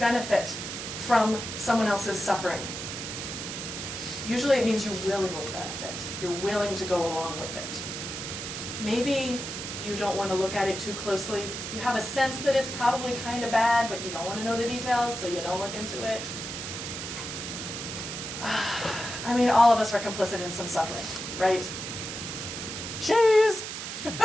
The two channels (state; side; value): noise; right; hiss, 6 dB below the sound